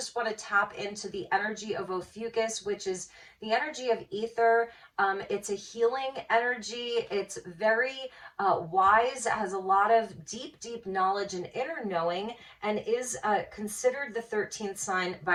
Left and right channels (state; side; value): identical; both; correlation 1.00